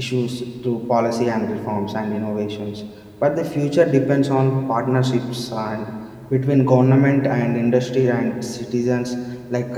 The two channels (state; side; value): identical; both; correlation 1.00